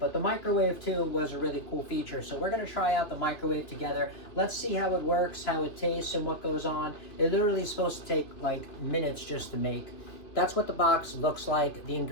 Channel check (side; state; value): right; late; 3.1 ms